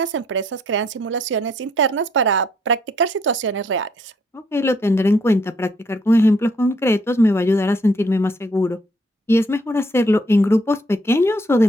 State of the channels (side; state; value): both; normal; correlation 0.68